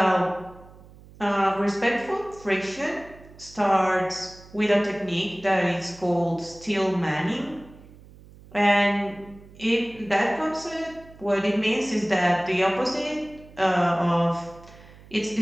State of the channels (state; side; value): noise; right; hum, 22 dB below the sound